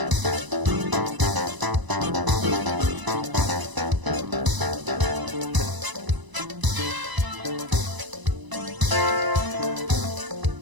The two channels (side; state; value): left; late; 1.0 ms